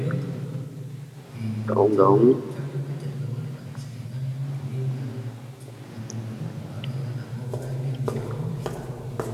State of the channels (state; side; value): identical; both; correlation 1.00